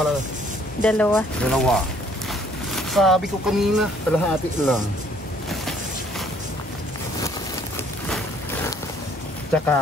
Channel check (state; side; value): normal; both; correlation 0.61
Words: 2. Sabi ko kanina, kalahati lang.